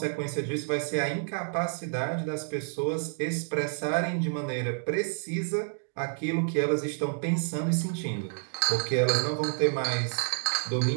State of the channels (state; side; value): silent; left; digital silence